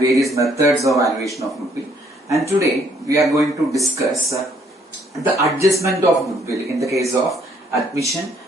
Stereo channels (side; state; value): both; normal; correlation 0.66